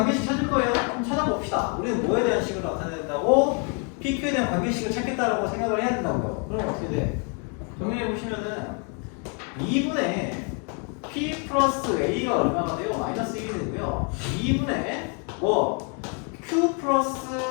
찾을 거예요. 한번 찾아봅시다. 우리는 뭐에 대한 식을 나타낸다고? PQ에 대한 관계식을 찾겠다라고 생각을 해야 된다고요. 그럼 어떻게 돼? 정리해 보시면은 2분의 P 플러스 A가 얼마가 돼요? 마이너스 1이 되고요. 2분의 뭐 Q 플러스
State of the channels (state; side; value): quieter; right; 37.6 dB